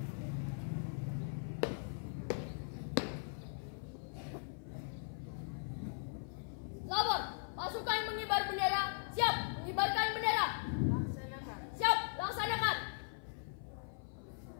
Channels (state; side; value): silent; right; 52 dB below the other